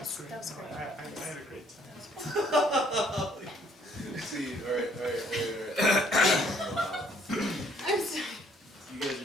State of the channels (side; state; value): both; normal; correlation 0.63